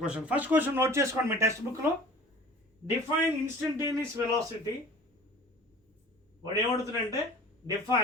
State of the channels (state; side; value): normal; both; correlation 0.44